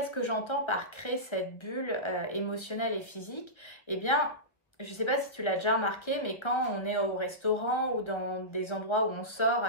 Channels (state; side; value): late; right; 1.3 ms